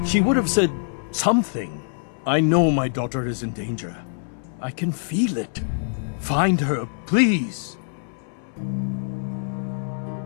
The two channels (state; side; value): silent; right; 62 dB below the other